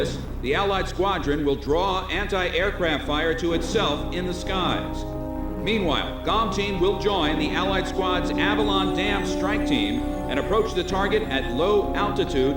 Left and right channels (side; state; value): both; identical; correlation 1.00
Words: the Allied squadron will draw anti-aircraft fire to itself in the skies. Meanwhile, GOM Team will join the Allied squad's Avalon Dam strike team and approach the target at low altitude